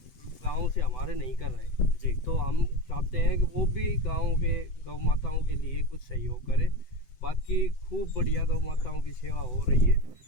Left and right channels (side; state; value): right; late; 7.9 ms